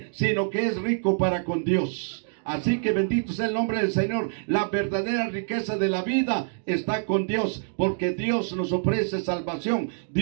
sino que es rico para con Dios. Así que bendito sea el nombre del Señor. La verdadera riqueza de la vida está con Dios, porque Dios nos ofrece salvación.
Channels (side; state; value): left; silent; digital silence